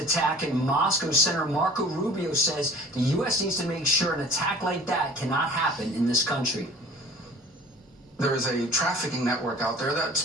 in Moscow, Senator Marco Rubio says the U.S. needs to make sure an attack like that cannot happen in this country. There is a trafficking network out there that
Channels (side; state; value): both; normal; correlation 0.46